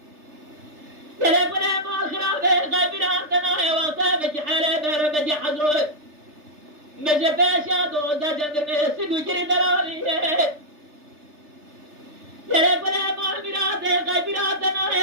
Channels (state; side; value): late; left; 3.3 ms